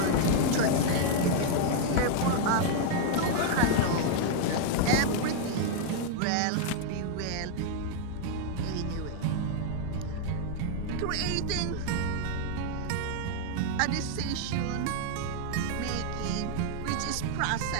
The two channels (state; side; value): different; both; correlation 0.00